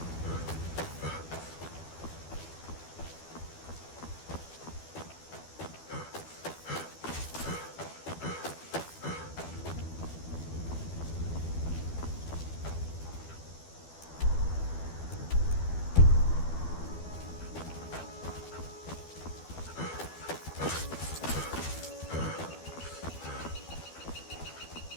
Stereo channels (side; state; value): right; late; 12 ms